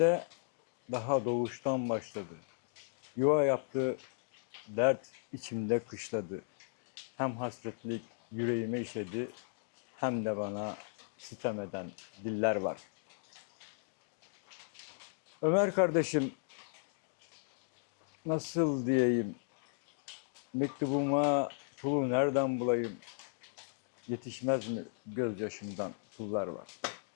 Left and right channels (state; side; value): silent; right; digital silence